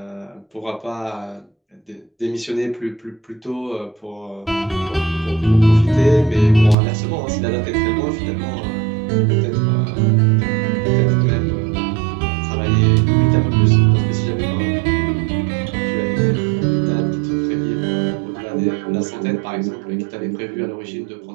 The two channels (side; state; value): left; drops out; at 6.8 s